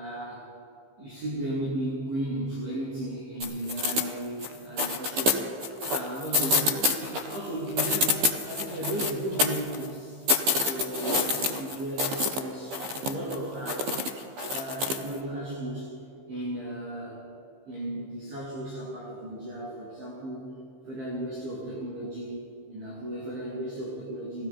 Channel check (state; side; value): late; left; 15 ms